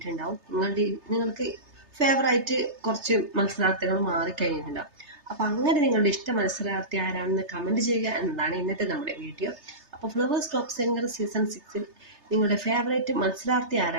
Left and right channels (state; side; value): late; left; 3.3 ms